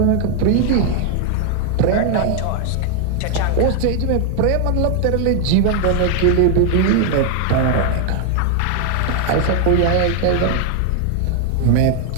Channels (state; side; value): different; both; correlation 0.00